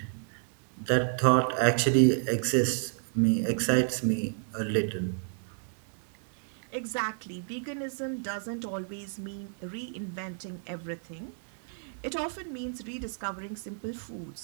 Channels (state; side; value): silent; left; digital silence